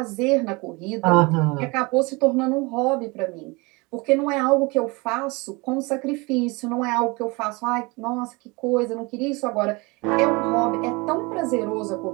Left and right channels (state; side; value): quieter; left; 26.0 dB